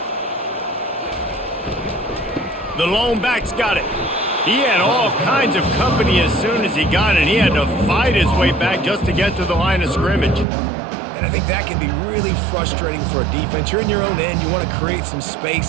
The lone back's got it. He had all kinds of company as soon as he got it. He had to fight his way back just to get to the line of scrimmage. And I think that can be really frustrating for a defense. You're in your own end. You want to create some space,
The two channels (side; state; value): left; drops out; at 10.5 s